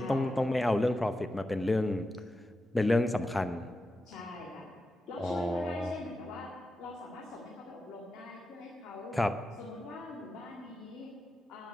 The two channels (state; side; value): normal; both; correlation 0.90